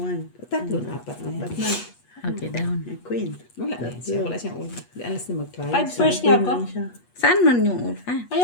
Tatlo na, apat na yan. Ba't na? Okay, down. Queen. Wala na siya. Wala siyang ulo. Di alas na mag-try. 5 pairs niya ako. Queen siya. Saan man yung ulo? Ah, Ay,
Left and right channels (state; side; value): late; right; 8.3 ms